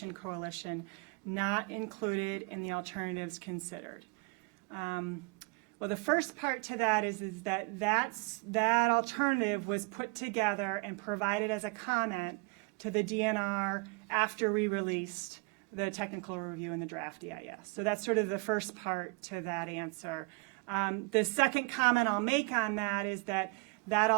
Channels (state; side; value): quieter; left; 30.6 dB